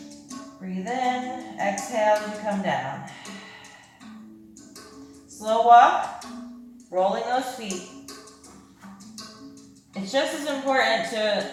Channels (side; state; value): both; identical; correlation 1.00